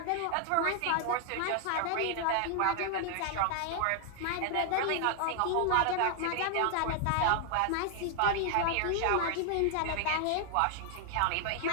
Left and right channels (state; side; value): different; both; correlation 0.00